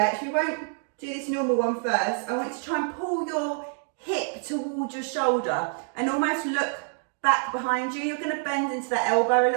We won't do this normal one first. I want you to try and pull your hip towards your shoulder and almost look back behind you. You're going to bend into that elbow a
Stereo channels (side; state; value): left; silent; 60 dB below the other